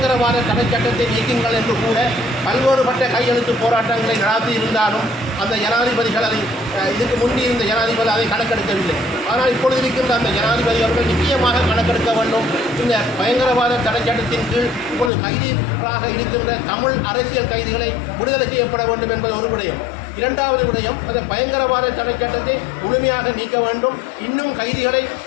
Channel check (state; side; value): drops out; right; at 15.1 s